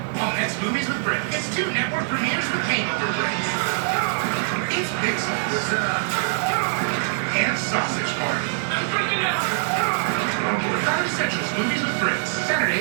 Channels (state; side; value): silent; left; digital silence